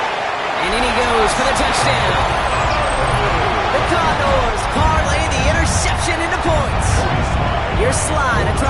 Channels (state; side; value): identical; both; correlation 1.00